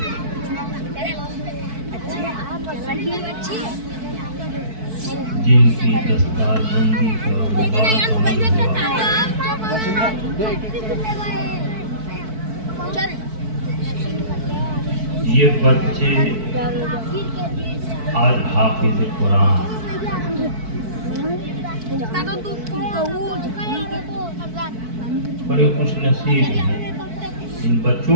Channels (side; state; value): left; late; 4.6 ms